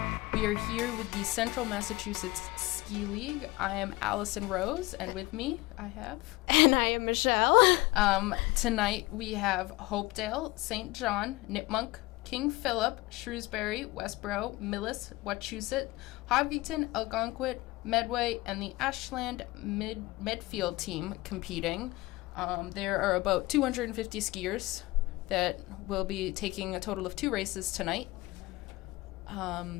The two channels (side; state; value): right; quieter; 20.9 dB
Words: We are here with the Central Massachusetts Ski League. I am Allison Rose, and with me I have... And I am Michelle. Tonight we have Hopedale, St. John, Nipmuc, King Philip, Shrewsbury, Westboro, Millis, Wachusett, Hopkinton, Algonquin, Medway, and the Ashland Medfield team competing. There are about 250 skiers that will be taking a total of 2 races tonight.